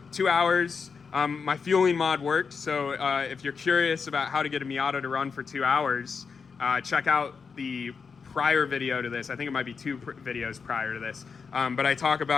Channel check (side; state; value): right; quieter; 5.5 dB